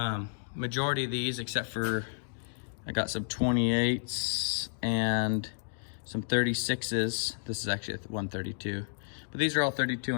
majority of these except for I got some 28s and some 36s. This is actually a 132, but these are all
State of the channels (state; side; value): silent; right; digital silence